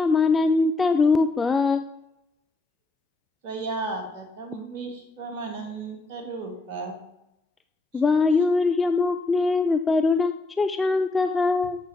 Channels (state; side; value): quieter; right; 3.3 dB